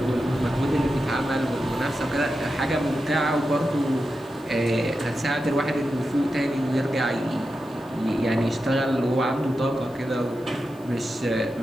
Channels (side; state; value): left; noise; hiss, 28 dB below the sound